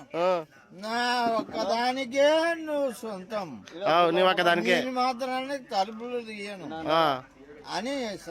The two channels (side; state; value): both; identical; correlation 1.00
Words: నా ఒక్కదానికే నువ్వు సొంతం, నీ ఒక్కదానికే మాత్రానికి తలుపులు తీయను అని